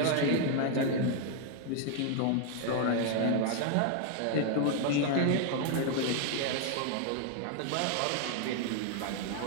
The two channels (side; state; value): both; different; correlation 0.00